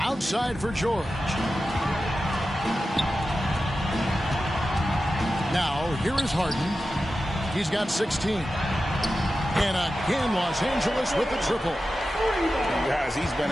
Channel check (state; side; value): normal; both; correlation 0.93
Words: Outside for George. Now, here is Harden. He's got 16. And again, Los Angeles with the triple. Guys, he's been